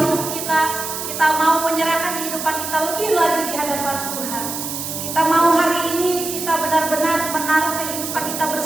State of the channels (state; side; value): noise; right; hiss, 5 dB below the sound